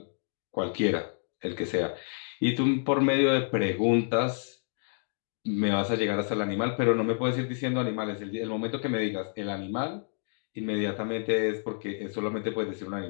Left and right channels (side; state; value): right; silent; 58 dB below the other